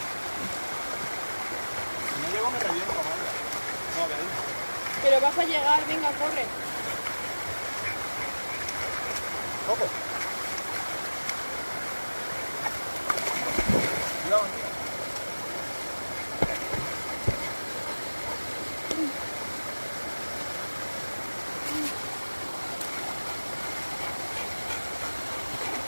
Si no llego me reviento, María. No, veis. Pero vas a llegar, venga, corre. Coco. Cuidado, tío.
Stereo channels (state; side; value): inverted; both; correlation -1.00